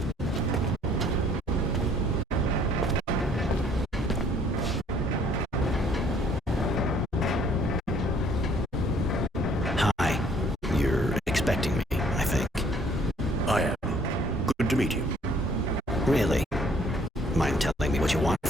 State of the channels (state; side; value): normal; both; correlation 0.61